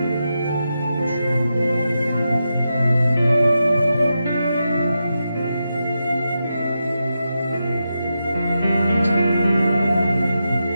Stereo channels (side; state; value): both; inverted; correlation -0.88